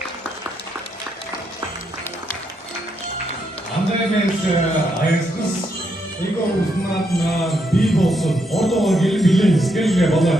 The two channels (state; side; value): normal; both; correlation 0.78